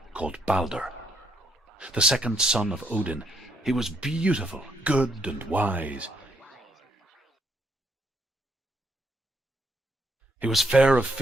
called Balder. The second son of Odin. He was beautiful, good, and wise. He was fair of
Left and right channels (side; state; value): both; normal; correlation 0.74